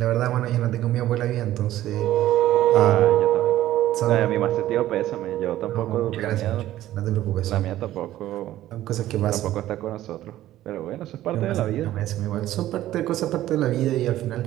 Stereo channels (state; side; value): quieter; left; 14.0 dB